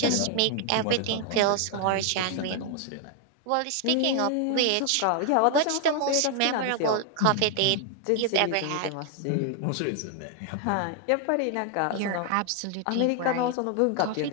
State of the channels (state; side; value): different; both; correlation 0.00